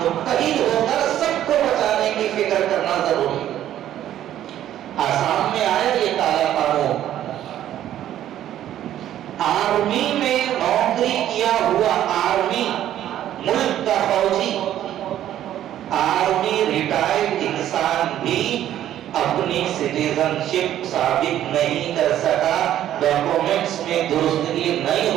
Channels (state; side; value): quieter; left; 11.9 dB